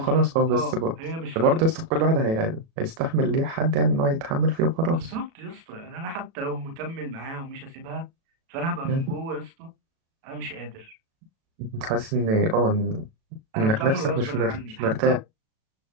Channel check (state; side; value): late; left; 37 ms